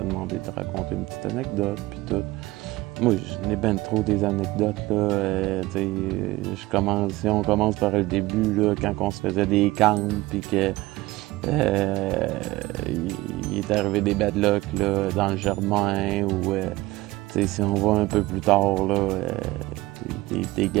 demandé de raconter une petite anecdote, puis tout. Moi, je n'ai ben trop des anecdotes, là. Si on commence par le début, là, quand on se faisait des camps, puis que il est arrivé des bad luck là, dans le Germain, ou si on va un peu plus tard, là, des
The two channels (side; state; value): left; quieter; 19.2 dB